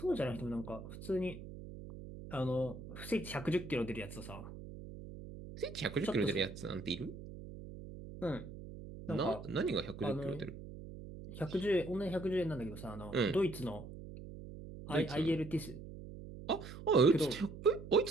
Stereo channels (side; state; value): right; noise; hum, 12 dB below the sound